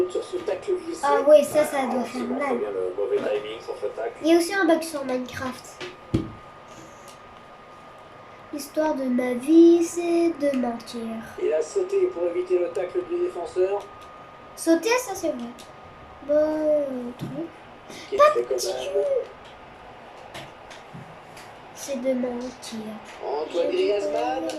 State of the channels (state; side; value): identical; both; correlation 1.00